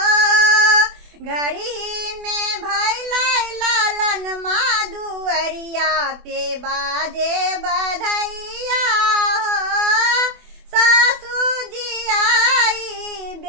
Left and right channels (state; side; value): late; left; 24 ms